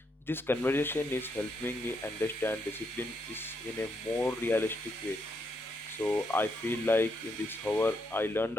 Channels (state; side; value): normal; both; correlation 0.78